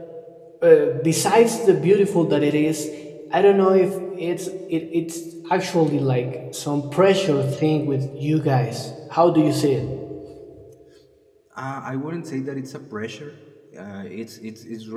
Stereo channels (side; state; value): both; identical; correlation 1.00